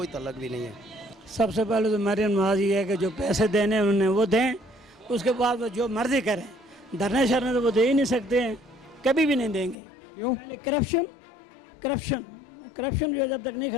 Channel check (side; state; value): right; drops out; at 9.8 s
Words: تعلق بھی نہیں ہے. سب سے پہلے تو مریم نواز یہ ہے کہ جو پیسے دینے انہوں نے وہ دیں، اس کے بعد وہ جو مرضی کریں. دھرنے شرنے تو وہ دے ہی نہیں سکتے ہیں، کبھی بھی نہیں دیں گے. کیوں؟ پہلے کرپشن جو جب تک نہیں